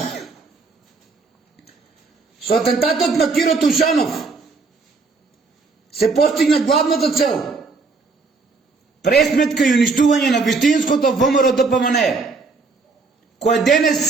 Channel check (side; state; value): left; quieter; 4.2 dB